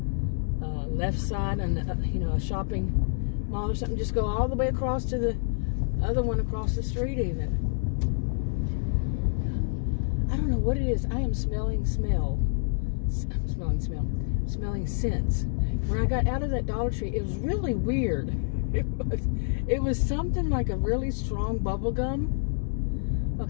left side and a shopping mall or something. Just go all the way across to the other one across the street even. I don't know what it is. I am smelling scents. When I got out of that Dollar Tree, it was really weird. It was something like a really strong bubble gum.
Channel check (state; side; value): silent; right; digital silence